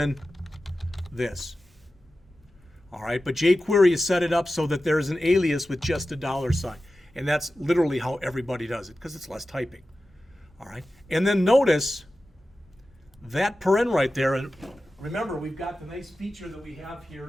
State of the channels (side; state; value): both; normal; correlation 0.94